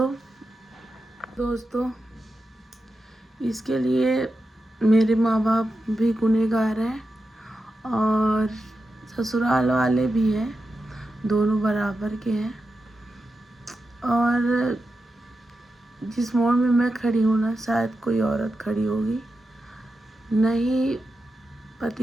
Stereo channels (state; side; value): normal; both; correlation 0.90